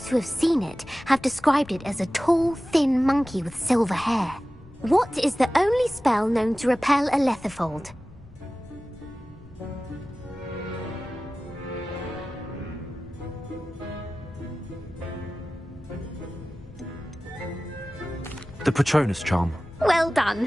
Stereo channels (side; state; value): left; noise; rumble, 21 dB below the sound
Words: who have seen it have described it as a tall, thin monkey with silver hair. What is the only spell known to repel a lethifold? The Patronus charm. Well